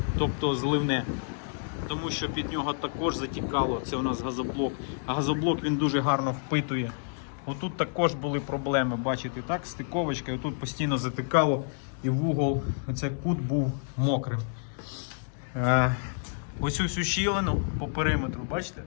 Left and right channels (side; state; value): right; silent; digital silence